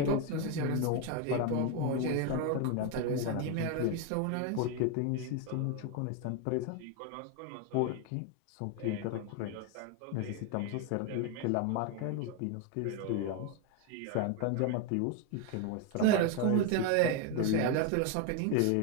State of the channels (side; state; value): both; different; correlation 0.01